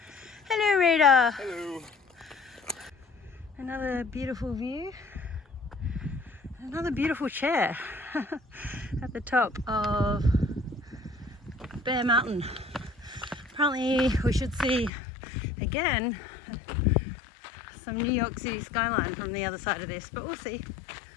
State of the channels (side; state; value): right; drops out; at 14.9 s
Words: Hello, Rita. Hello. Another beautiful view. Another beautiful chair at the top of Bear Mountain. Apparently we should see again some New York City skyline from the other side of this, but we'll see.